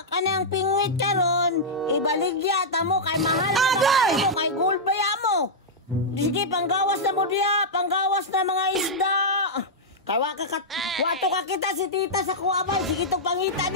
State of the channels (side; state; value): both; normal; correlation -0.08